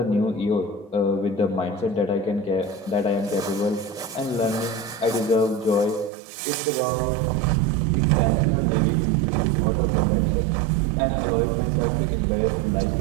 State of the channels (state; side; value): drops out; left; at 6.1 s